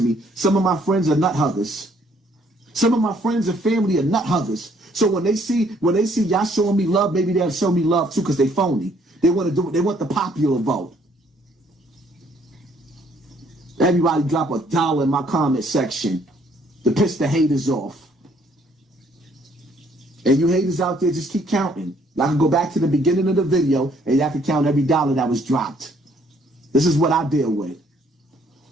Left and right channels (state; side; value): normal; both; correlation 0.65